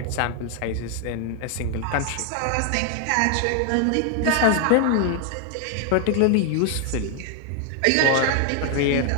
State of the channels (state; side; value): different; both; correlation 0.00